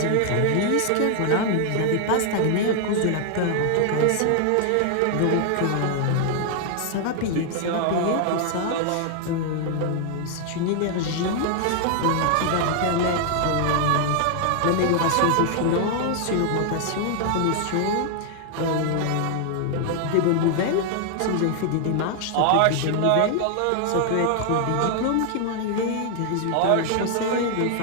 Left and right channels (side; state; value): both; different; correlation 0.00